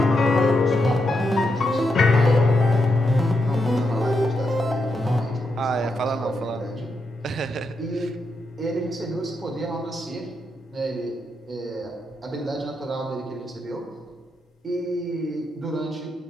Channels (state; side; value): normal; both; correlation 0.83